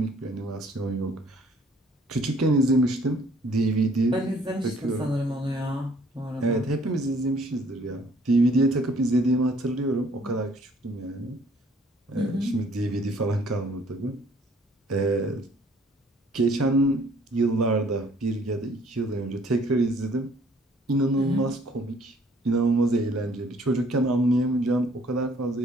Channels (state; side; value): normal; both; correlation 0.60